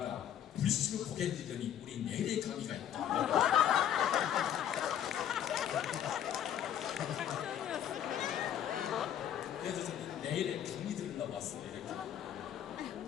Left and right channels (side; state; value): right; quieter; 10.1 dB